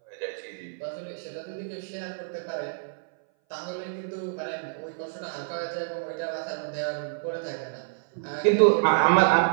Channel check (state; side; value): silent; left; 58 dB below the other